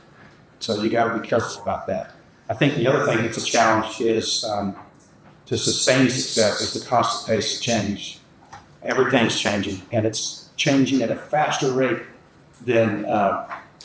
So you got to be careful about that. I think the other thing that's a challenge is to sustain success is the constant pace of change. Everything's changing, and it's changing at a faster rate than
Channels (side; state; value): both; identical; correlation 1.00